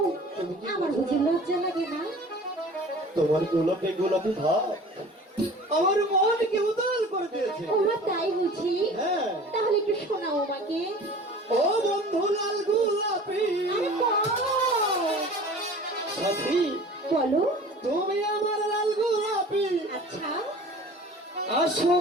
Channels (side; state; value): both; normal; correlation 0.43